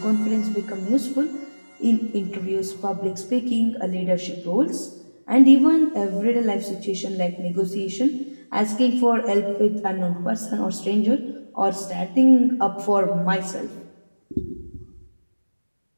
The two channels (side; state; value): both; inverted; correlation -1.00